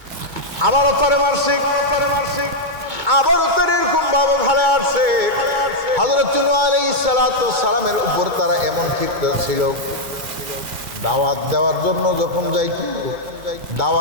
আবারও তারে মারছে, আবারও তার এরকম ভাবে ভালো আসছে। হযরত নূহ আলাইহিস সালামের উপর তারা এমন ক্ষিপ্ত ছিল, দাওয়াত দেওয়ার জন্য যখন যাইত,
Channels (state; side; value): late; left; 2.3 ms